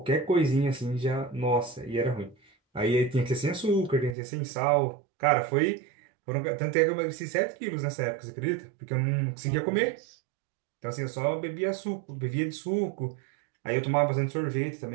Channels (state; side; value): drops out; left; at 4.2 s